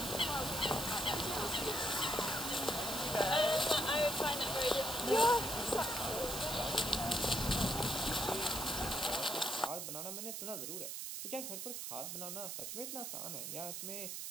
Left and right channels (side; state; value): right; noise; hiss, 5 dB below the sound